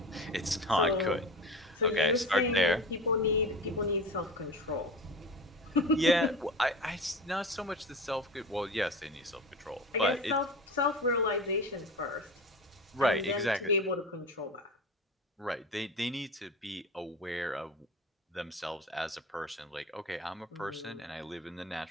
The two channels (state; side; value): normal; both; correlation 0.31